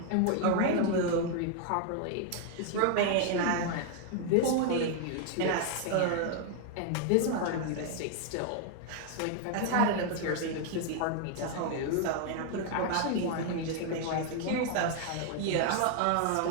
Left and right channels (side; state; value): both; different; correlation 0.00